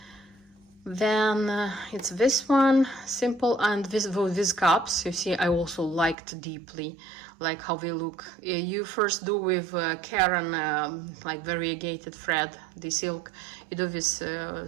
Then it's this one, simple, and these cups, you see, I also liked deeply, like how they look. You first do with Karen, like variegated thread, the silk, you do these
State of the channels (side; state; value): left; drops out; at 6.2 s